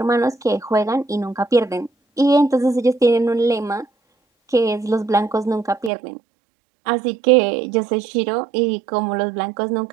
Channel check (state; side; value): drops out; left; at 5.9 s